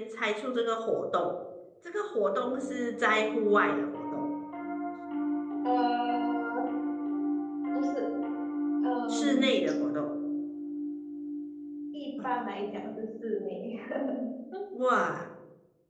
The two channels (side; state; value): both; identical; correlation 1.00